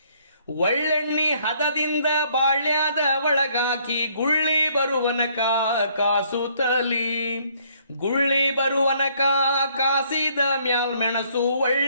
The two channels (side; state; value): both; inverted; correlation -0.65